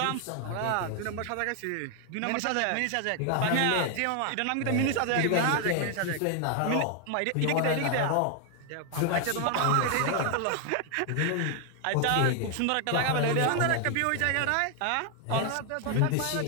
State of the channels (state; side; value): different; both; correlation 0.00